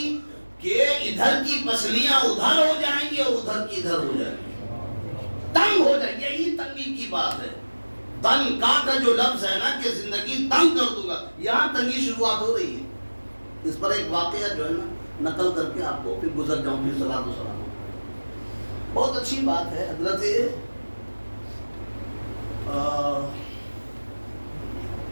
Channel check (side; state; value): both; inverted; correlation -1.00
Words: کہ ادھر کی پسلیاں ادھر ہو جائیں گی اور ادھر کی ادھر ہو جائیں گی، تنگ ہو جائے گی. یہی تنگی کی بات ہے. تنگ کا جو لفظ ہے نا کہ زندگی تنگ کر دوں گا، یہاں تنگی شروعات ہو رہی ہے. اس پر ایک واقعہ جو ہے نا نقل کر کے آپ کو پھر گزر جاؤں، پھر صلاۃ و سلام. بہت اچھی بات ہے.